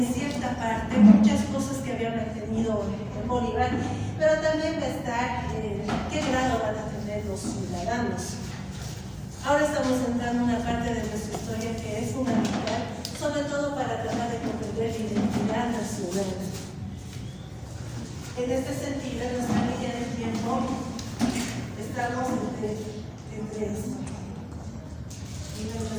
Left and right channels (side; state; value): both; identical; correlation 1.00